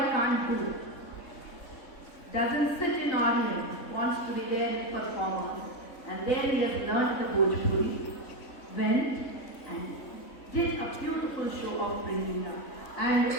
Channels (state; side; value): late; right; 3.6 ms